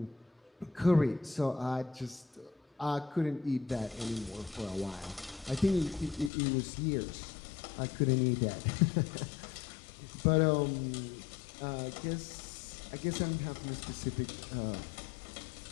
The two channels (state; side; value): drops out; right; at 6.3 s